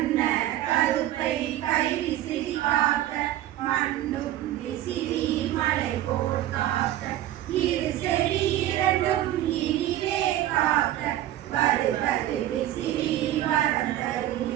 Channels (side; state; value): left; quieter; 13.5 dB